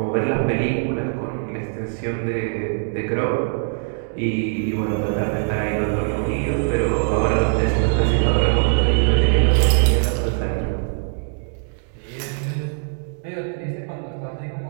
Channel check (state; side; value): silent; left; 64 dB below the other